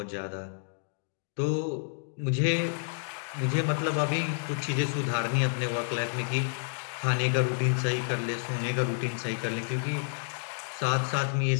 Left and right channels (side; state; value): right; silent; digital silence